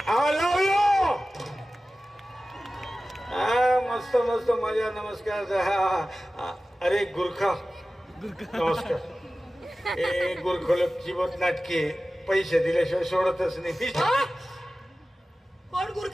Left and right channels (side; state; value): both; normal; correlation 0.96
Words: आलो यो मस्त मस्त मजा नमस्कार अरे गुरखा नमस्कार ए गुरखोलक जीवत नाटके पैसे दिल्याशिवाय सोडतच नाही कोण